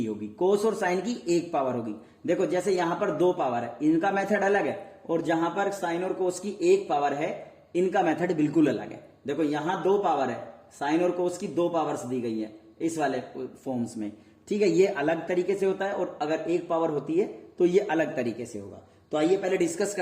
होगी, कोस और साइन की 1 पावर होगी। देखो जैसे यहां पर 2 पावर है, इनका मेथड अलग है, और जहां पर साइन और कोस की 1 पावर है, इनका मेथड बिल्कुल अलग है। देखो यहां 2 पावर है, साइन और कोस की 2 पावर्स दी गई है इस वाले फॉर्म्स में, ठीक है, ये अलग तरीके से होता है, और अगर 1 पावर होती है तो ये अलग तरीके से होगा। तो आइए पहले डिस्कस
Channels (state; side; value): identical; both; correlation 1.00